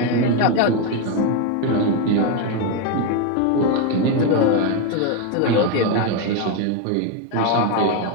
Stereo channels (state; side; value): different; both; correlation 0.02